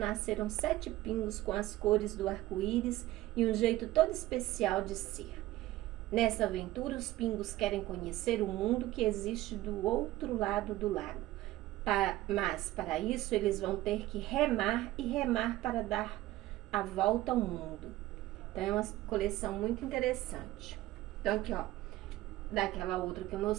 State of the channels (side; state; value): left; quieter; 16.3 dB